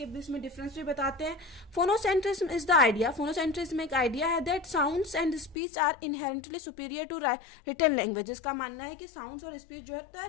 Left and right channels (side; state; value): right; drops out; at 5.6 s